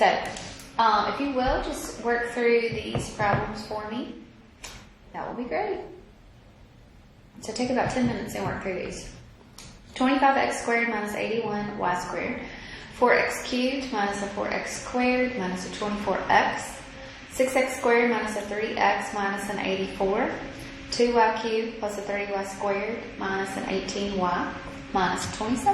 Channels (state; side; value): identical; both; correlation 1.00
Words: if you will, just work through these problems for me. That will be great. So take about 10 minutes and work through these. 25x squared minus 81y squared. 4x cubed minus a 4x squared minus a 24x. 6x squared minus a 3x minus an 84. 2y cubed plus a 30y squared minus an 18y minus